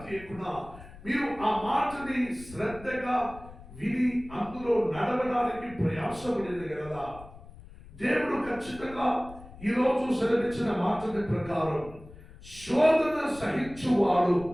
తీయకుండా మీరు ఆ మాటని శ్రద్ధగా విని అందులో నడవడానికి ప్రయాసపడేది కదా. దేవుడు ఖచ్చితంగా ఈరోజు సెలవిచ్చిన మాటని ప్రకారం శోధన సహించువాడు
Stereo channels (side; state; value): left; noise; rumble, 18 dB below the sound